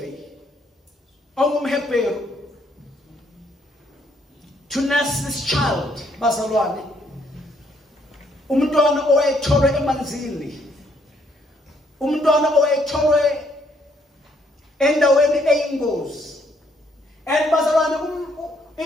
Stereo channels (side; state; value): both; normal; correlation 0.70